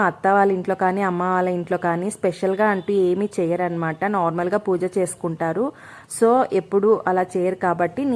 అత్త వాళ్ళ ఇంట్లో కానీ అమ్మ వాళ్ళ ఇంట్లో కానీ స్పెషల్గా అంటూ ఏమీ చేయరనమాట. నార్మల్గా పూజ చేసుకుంటారు. సో ఎప్పుడు అలా చేయరు కాబట్టి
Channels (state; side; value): identical; both; correlation 1.00